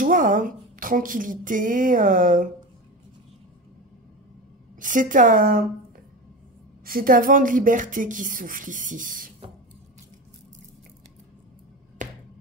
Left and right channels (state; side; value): normal; both; correlation 0.26